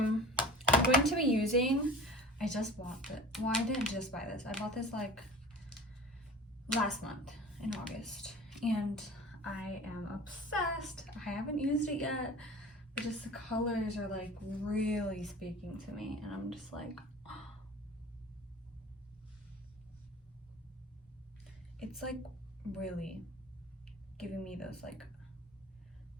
going to be using, I just bought it. Well, I didn't just buy this. I bought this like last month in August and I am obsessed. I haven't used it yet, but just the colors are like really speaking to me and I'm just like, oh. It's like really giving me those like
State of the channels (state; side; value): normal; both; correlation 0.39